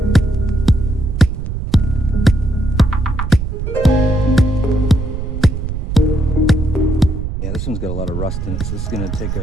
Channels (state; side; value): noise; right; rumble, 4 dB below the sound